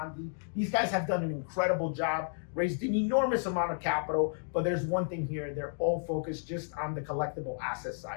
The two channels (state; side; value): silent; right; digital silence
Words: These guys have done an incredible job, raised an enormous amount of capital, but there's one thing here: they're all focused just on the collectible asset